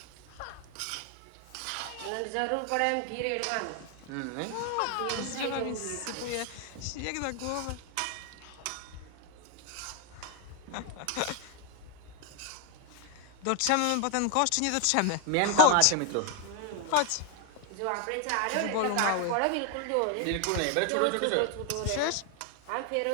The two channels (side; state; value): both; different; correlation 0.00